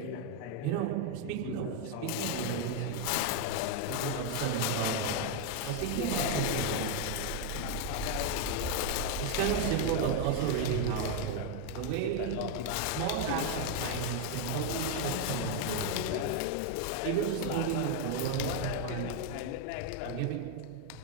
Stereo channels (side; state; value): both; different; correlation 0.01